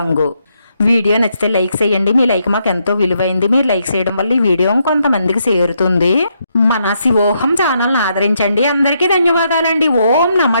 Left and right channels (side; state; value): both; inverted; correlation -0.77